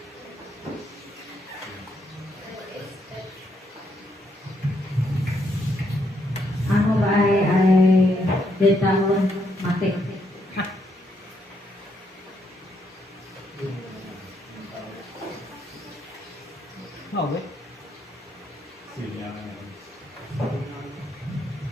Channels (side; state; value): both; normal; correlation 0.75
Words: dari tahun mati.